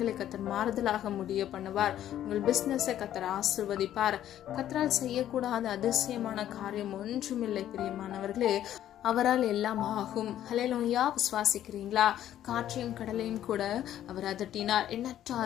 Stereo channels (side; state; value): right; quieter; 11.7 dB